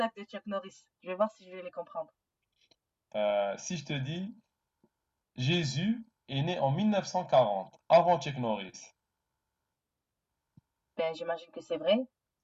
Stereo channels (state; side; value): identical; both; correlation 1.00